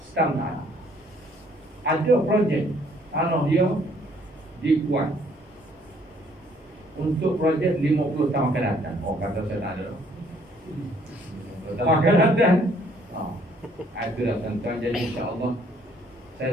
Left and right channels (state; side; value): normal; both; correlation 0.63